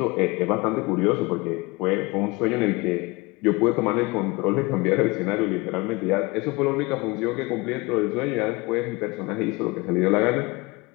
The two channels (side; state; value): right; quieter; 24.3 dB